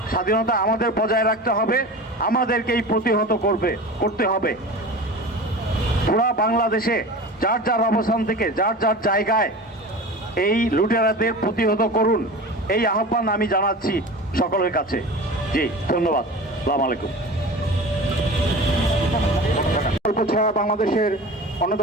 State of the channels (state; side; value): normal; both; correlation 0.35